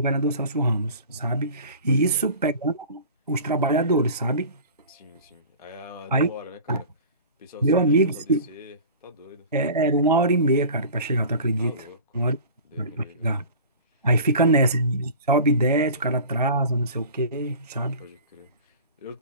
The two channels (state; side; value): inverted; both; correlation -0.38